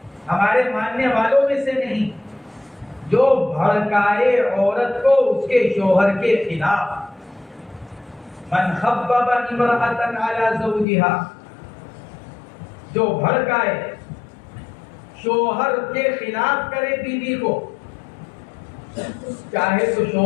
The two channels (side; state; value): right; drops out; at 10.9 s